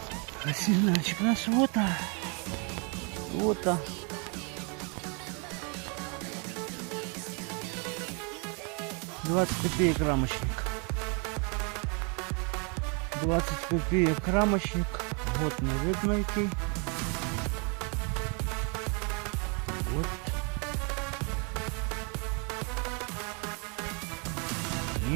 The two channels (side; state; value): left; quieter; 34.9 dB